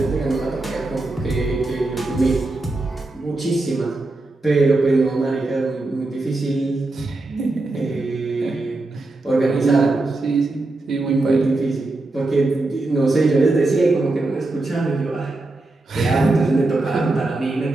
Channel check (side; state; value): left; quieter; 3.0 dB